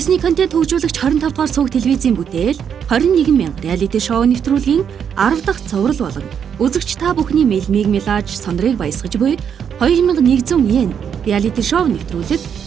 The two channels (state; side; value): quieter; left; 7.9 dB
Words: контент хөгжүүлэгч 25 дугаар сувг телевизийн бүтээл 21,000 реалити шоу нэвтрүүлгийн 10 дахь цоврал болон үзэгч та бүхний мэлмиг мэлааж сондрыг баясгаж буй 2100 йен реалити шоу нэвтрүүлэг